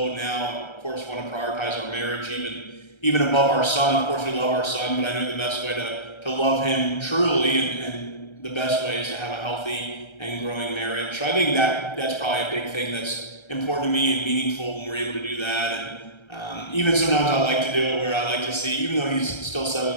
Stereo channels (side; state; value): right; late; 1.3 ms